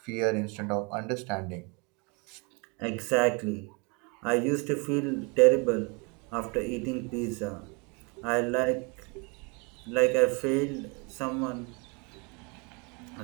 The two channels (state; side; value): quieter; left; 31.1 dB